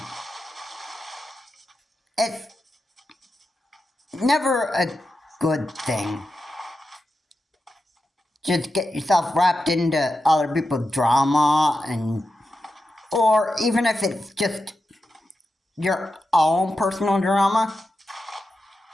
it's never a good thing. Just get yourself wrapped into other people's drama, or even if it's just your own personal drama,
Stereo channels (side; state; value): both; normal; correlation 0.90